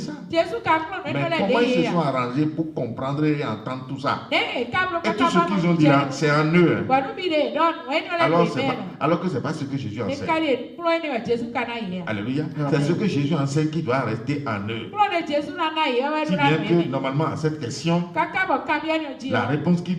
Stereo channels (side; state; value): both; identical; correlation 1.00